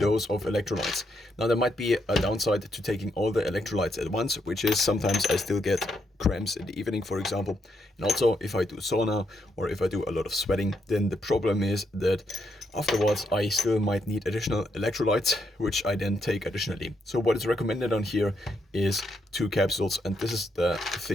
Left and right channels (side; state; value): both; normal; correlation 0.78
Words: of electrolytes. Now there might be a downside to taking all the electrolytes at once, which is sometimes I still get cramps in the evening, for example. And also if I do sauna or if I do a lot of sweating, then the problem is that afterwards I still might need additional electrolytes, which I then take additionally. So what is recommended on here is 2 capsules, and this is the